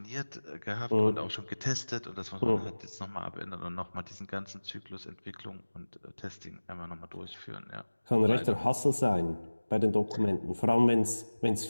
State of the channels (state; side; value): inverted; both; correlation -1.00